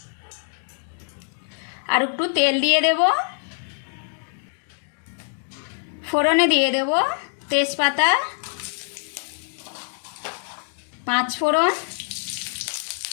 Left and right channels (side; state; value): right; silent; digital silence